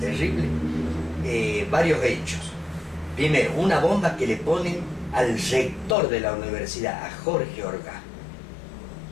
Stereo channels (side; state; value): right; drops out; at 6.0 s